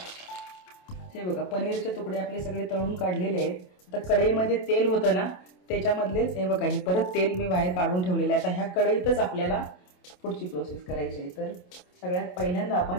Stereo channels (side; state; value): right; late; 27 ms